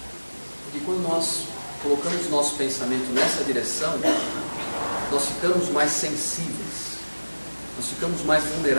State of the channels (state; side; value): inverted; both; correlation -1.00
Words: Porque quando nós colocamos nosso pensamento nessa direção, nós ficamos mais sensíveis, nós ficamos mais